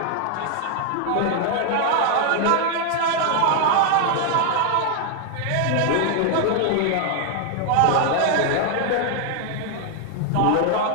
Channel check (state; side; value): different; both; correlation 0.00